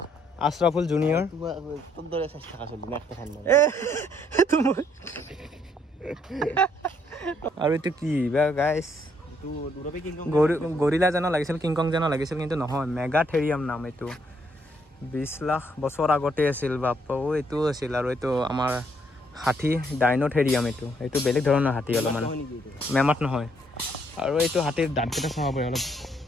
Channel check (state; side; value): normal; both; correlation 0.71